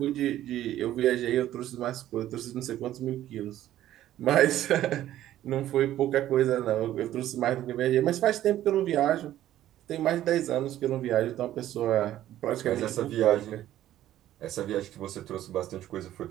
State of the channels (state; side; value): quieter; left; 13.0 dB